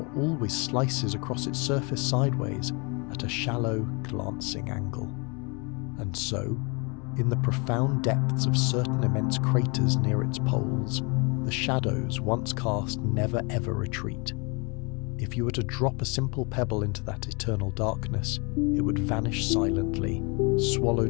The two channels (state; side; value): quieter; right; 31.2 dB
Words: always slices across its surface sideways at a shallow, glancing angle. And so, in the profound depths of certain immense craters near its poles, the shadows once cast never ever retreat. If you were to drop a simple pebble into that eternal darkness, it would vanish silently,